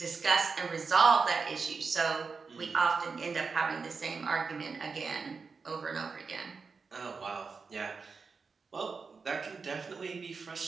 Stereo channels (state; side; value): quieter; left; 4.9 dB